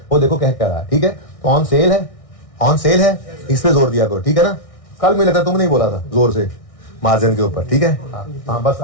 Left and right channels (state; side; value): late; right; 1.6 ms